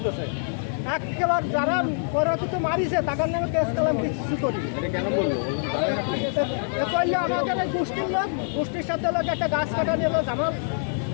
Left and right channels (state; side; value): silent; right; digital silence